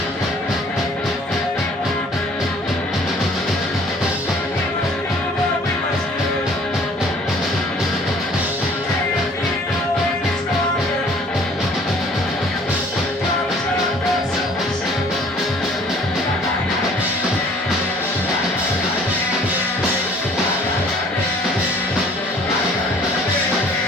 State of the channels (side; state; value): both; normal; correlation 0.55